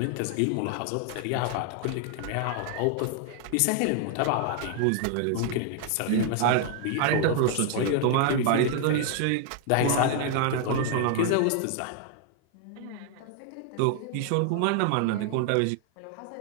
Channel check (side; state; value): both; different; correlation 0.00